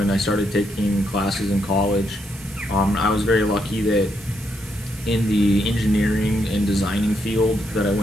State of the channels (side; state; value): both; normal; correlation 0.78